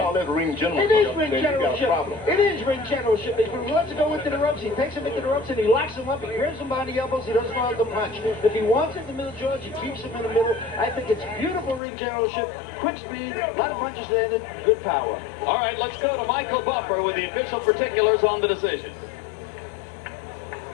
it ring generalship, it is ring then you got a generalship. problem. It is ring generalship. If he wants to go into the ropes, he takes him into the ropes and he locks him up. He grabs him behind the elbows. He doesn't know how to punch. If he wants it in the middle, George, he keeps him in the middle. I think it's beautiful ring generalship. Quick speed, a lot of punches landed, good power. All right, let's go to Michael Buffer with the official particulars on the decision.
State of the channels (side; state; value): right; drops out; at 11.8 s